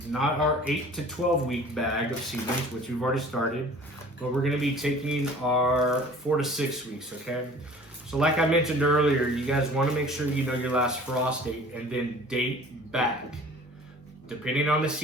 not our 8 to 12 week bag of seedlings, which we've already started, but we're gonna be taking our 4 to 6 weeks, okay? So like I mentioned earlier, you guys wanna make sure you know your last frost date and then date back. Depending on the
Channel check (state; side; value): normal; both; correlation 0.47